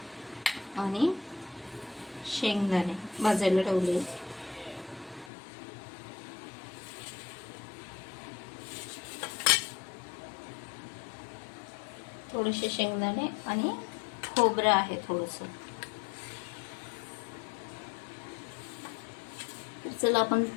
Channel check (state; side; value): drops out; right; at 5.3 s